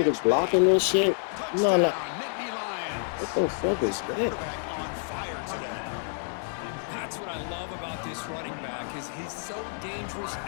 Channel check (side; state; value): right; silent; 59 dB below the other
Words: niggas blocking this shit? No, no. Nittany Lions. What the fuck is that? Quarterback on fire today. That's what I love about this running back is he's so dangerous